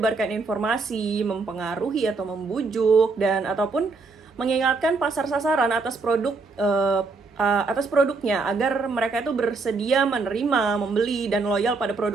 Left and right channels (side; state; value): left; quieter; 4.1 dB